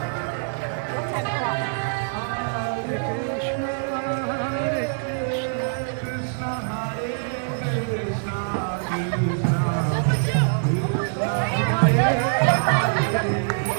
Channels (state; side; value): silent; left; digital silence